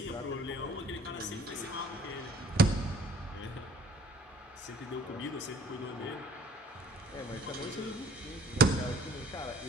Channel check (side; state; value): both; normal; correlation 0.56